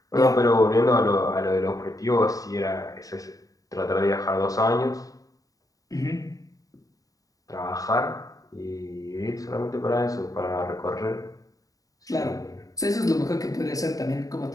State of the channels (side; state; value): right; late; 0.17 ms